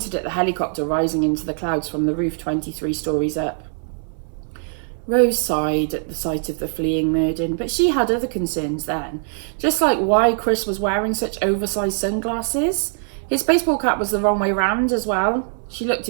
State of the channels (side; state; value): left; silent; 64 dB below the other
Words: at the helicopter rising into the clouds from the roof 23 stories up. Rose sighed at the sight of the fleeing Merdyn, but she had other concerns then, just like why Chris was wearing such oversized sunglasses. His baseball cap was the wrong way round as well. She looked